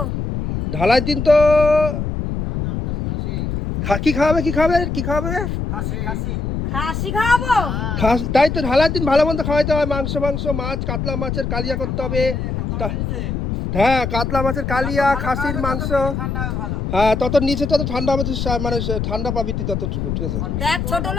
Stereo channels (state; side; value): noise; left; rumble, 3 dB below the sound